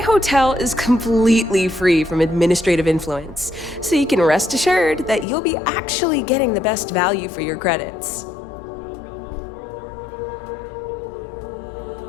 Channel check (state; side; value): drops out; right; at 5.2 s